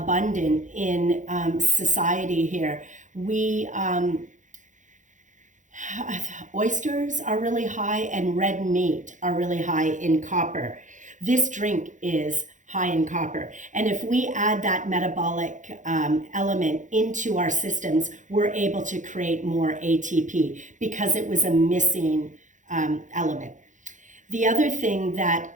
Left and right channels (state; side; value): late; left; 0.36 ms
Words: in society here. Oysters are really high and red meat are really high in copper. This drink is high in copper. And if we add that metabolic element into our systems, we're able to create more ATP because it was a missing element. The other thing that